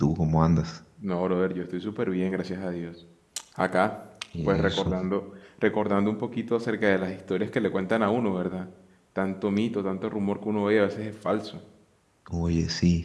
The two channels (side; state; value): both; identical; correlation 1.00